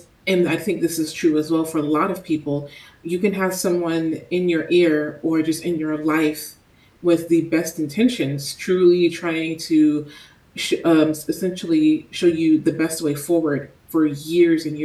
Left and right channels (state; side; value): identical; both; correlation 1.00